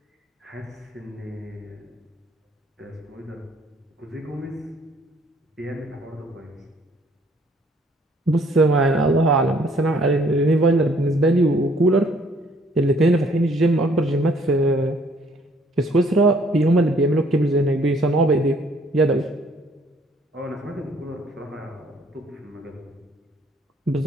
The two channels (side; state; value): both; normal; correlation 0.62